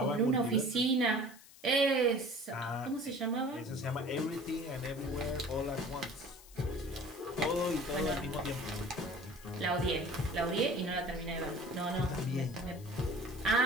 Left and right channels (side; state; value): left; noise; hiss, 21 dB below the sound